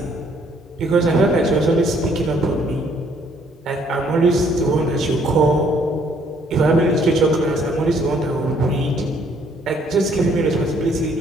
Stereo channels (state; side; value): normal; both; correlation 0.65